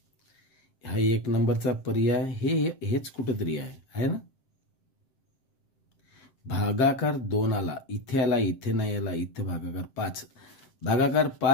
हा 1 नंबरचा पर्याय हेच कुठंतरी आहे ना. भागाकार 2 आला इथे आला इथे नाही आला. इथे भागाकार 5 भागाकार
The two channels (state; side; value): late; right; 7.7 ms